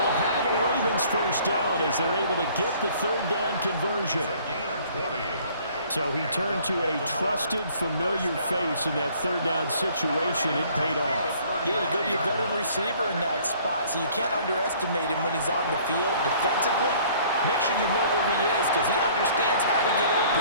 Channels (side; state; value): both; inverted; correlation -0.56